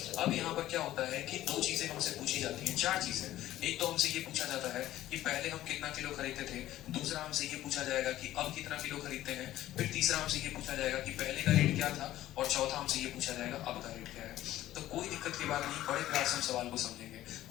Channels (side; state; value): right; quieter; 14.2 dB